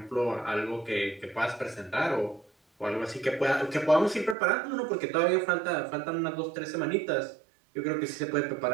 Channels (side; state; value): left; drops out; at 4.4 s